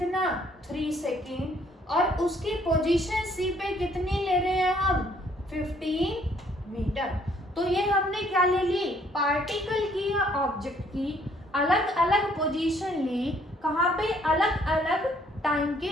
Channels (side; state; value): both; normal; correlation 0.64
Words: 3 सेकेंड, और उसकी पोजीशन सी पे कितनी ले रहे हैं हम 15 मीटर। तो ये हमने क्या ले ली, पार्टिकल की या ऑब्जेक्ट की अलग अलग पोजीशन ली, कहाँ पे, अलग अलग टाइम के